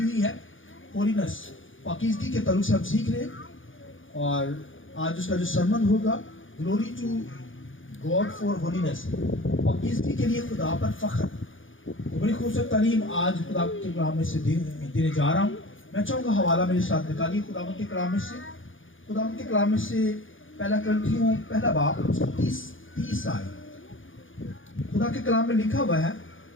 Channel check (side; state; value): right; late; 0.57 ms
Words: ہوئی ہے، ہولینس، پاکیزگی کے تعلق سے ہم سیکھ رہے ہیں، اور آج اس کا جو سرمن ہوگا glory to God for holiness, پاکیزگی کے لیے خدا پر فخر۔ بڑی خوبصورت تعلیم آج خدا کے کلام میں سے دینے جا رہا ہوں۔ میں چاہوں گا حوالہ میرے ساتھ نکالیے خداوند کے کلام میں سے، خداوند کے کلام میں سے پہلا کرنتھیوں پہلا باب 30 آیت۔ خدا کے کلام میں لکھا ہوا ہے،